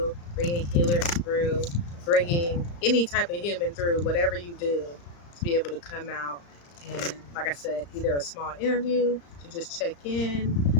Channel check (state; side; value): late; right; 35 ms